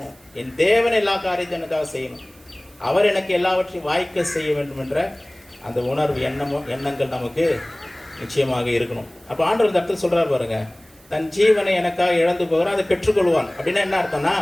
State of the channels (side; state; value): right; noise; hiss, 29 dB below the sound